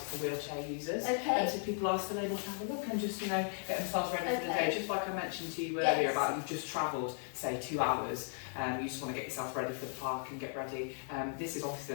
wheelchair users. Okay. So people are still able to have a look and just, get themselves ready for the day. Just like I mentioned to you earlier about you've just travelled, say 2 hours, you just want to get yourself ready for the park and get ready. This is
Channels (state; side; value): silent; right; 54 dB below the other